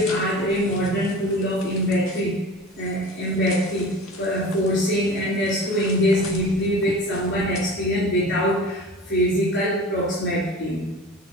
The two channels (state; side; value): normal; both; correlation 0.37